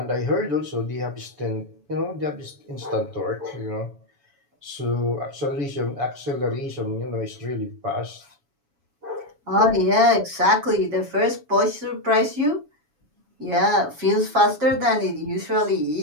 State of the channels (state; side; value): late; left; 7.1 ms